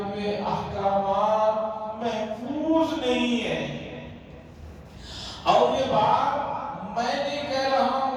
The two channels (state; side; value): identical; both; correlation 1.00